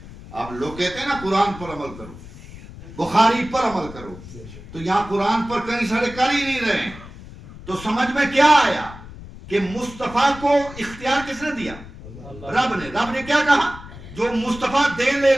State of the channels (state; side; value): noise; left; rumble, 16 dB below the sound